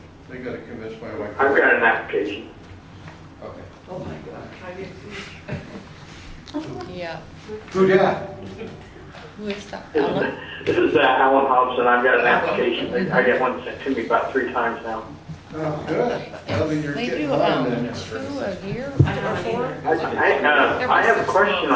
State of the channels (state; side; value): identical; both; correlation 1.00